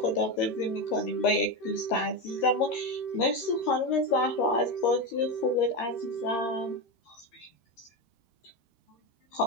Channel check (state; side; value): late; right; 13 ms